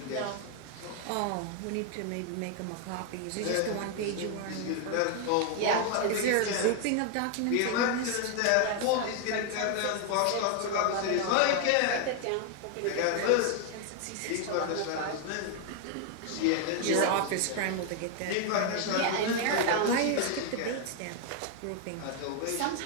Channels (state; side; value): different; both; correlation 0.00